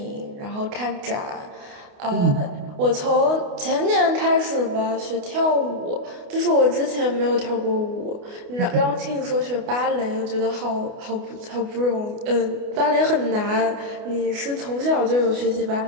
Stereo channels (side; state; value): left; late; 28 ms